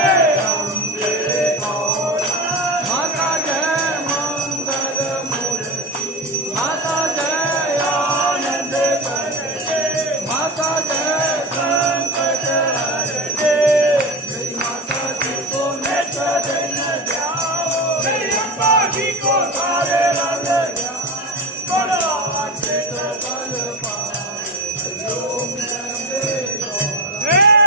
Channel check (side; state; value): both; normal; correlation 0.24